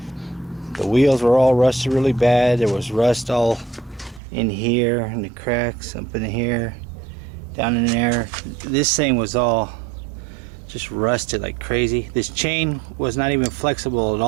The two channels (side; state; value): left; drops out; at 4.2 s